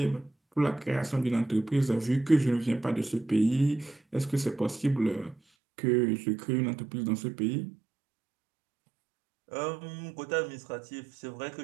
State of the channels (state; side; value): drops out; left; at 5.4 s